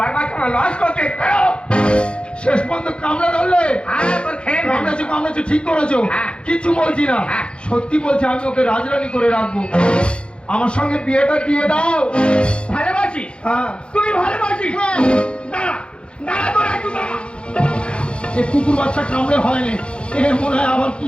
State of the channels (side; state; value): right; late; 0.056 ms